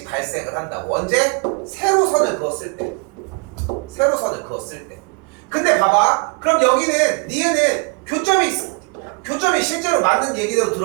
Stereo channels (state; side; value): quieter; left; 37.3 dB